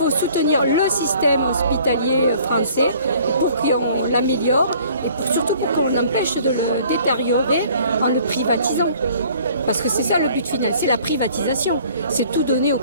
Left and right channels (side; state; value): both; inverted; correlation -0.54